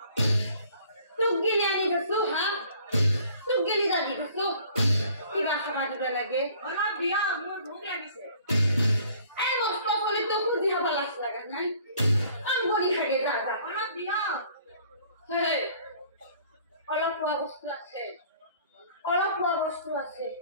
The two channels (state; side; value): inverted; both; correlation -0.55